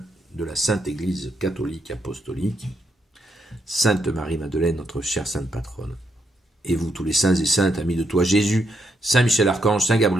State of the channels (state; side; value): normal; both; correlation 0.78